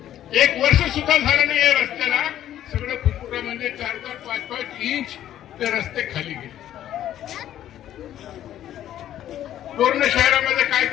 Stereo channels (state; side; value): quieter; right; 11.8 dB